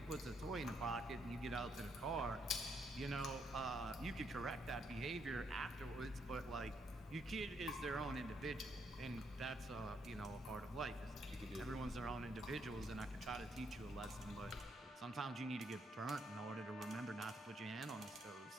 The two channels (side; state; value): both; normal; correlation 0.74